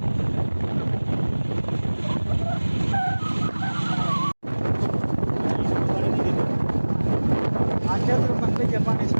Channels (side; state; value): both; inverted; correlation -1.00